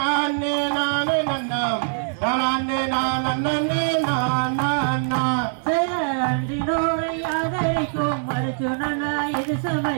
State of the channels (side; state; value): left; silent; 64 dB below the other